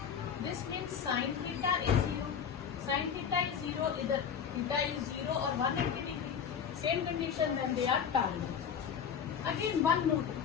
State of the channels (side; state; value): right; quieter; 7.5 dB